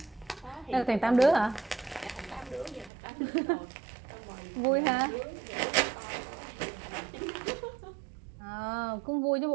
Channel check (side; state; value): left; drops out; at 2.9 s